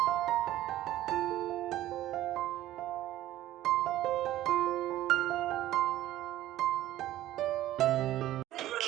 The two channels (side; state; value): left; quieter; 14.2 dB